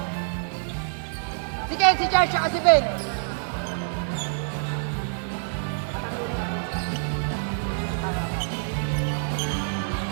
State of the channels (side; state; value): left; silent; 55 dB below the other